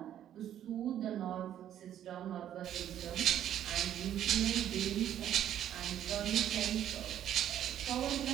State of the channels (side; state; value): left; quieter; 10.9 dB